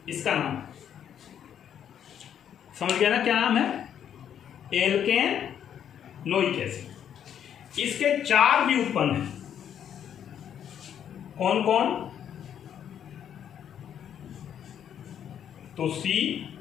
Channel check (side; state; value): right; quieter; 9.2 dB